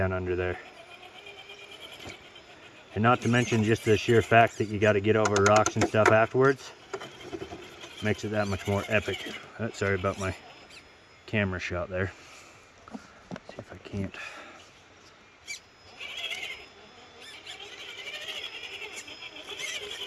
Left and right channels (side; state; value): both; identical; correlation 1.00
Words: under there. And not to mention just the sheer fact that you got to get over rocks and stuff afterwards makes it that much more epic. Sorry about my camera shot there. Let's see if I can't.